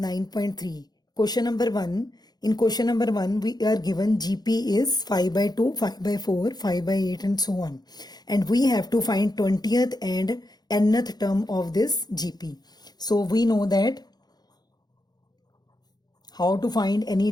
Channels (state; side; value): late; right; 0.19 ms